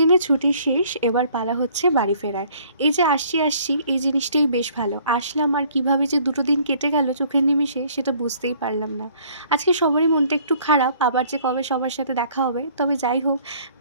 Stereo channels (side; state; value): both; inverted; correlation -0.58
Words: ছুটি শেষ, এবার পালা হচ্ছে বাড়ি ফেরার। এই যে আসছি এই জিনিসটাই বেশ ভালো। আসলাম আর কিভাবে যে দুটো দিন কেটে গেল চোখের নিমিষে সেটা বুঝতেই পারলাম না। আজকে সবারই মনটা একটু খারাপ, আবার যে কবে সবার সাথে দেখা হবে। তবে যাই হোক,